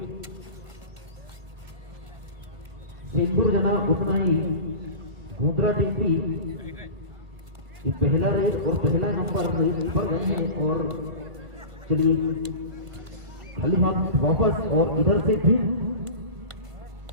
सेंदूर जनाब उतना ही गोंदरा टीम भी पहला रेस और पहला नंबर रेस पर गए हैं। और चलिए खाली हाथ वापस और इधर से फिर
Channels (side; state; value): left; late; 1.5 ms